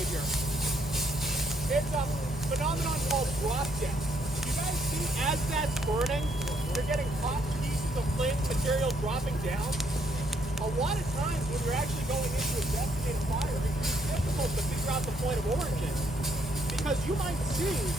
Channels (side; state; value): both; normal; correlation 0.72